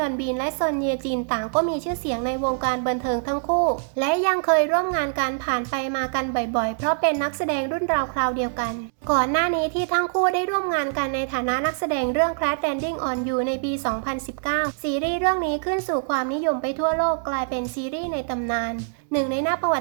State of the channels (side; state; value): left; silent; 62 dB below the other